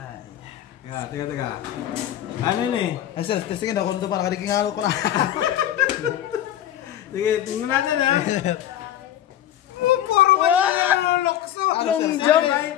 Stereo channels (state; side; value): quieter; right; 11.8 dB